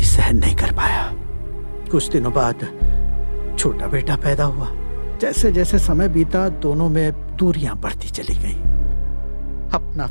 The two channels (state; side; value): inverted; both; correlation -1.00